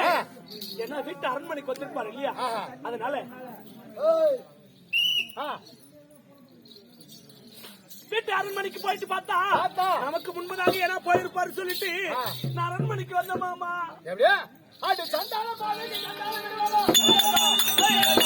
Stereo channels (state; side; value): identical; both; correlation 1.00